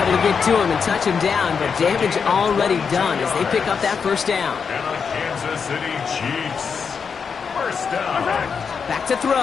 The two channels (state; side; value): quieter; right; 6.1 dB